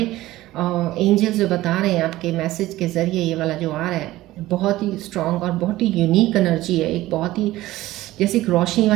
एंजल्स जो बता रहे हैं आपके मैसेज के ज़रिए, ये वाला जो आ रहा है बहुत ही स्ट्रांग और बहुत ही यूनिक एनर्जी है, एक बहुत ही जैसे एक रोशनी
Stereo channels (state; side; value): quieter; left; 16.5 dB